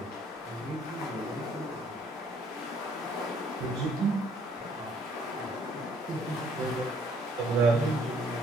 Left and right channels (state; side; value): normal; both; correlation 0.63